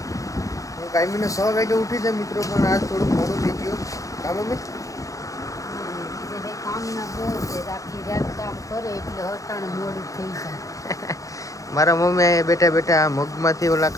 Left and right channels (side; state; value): right; late; 0.16 ms